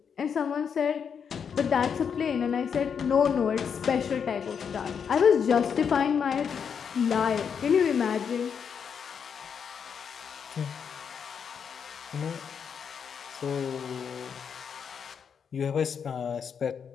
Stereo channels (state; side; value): quieter; right; 7.0 dB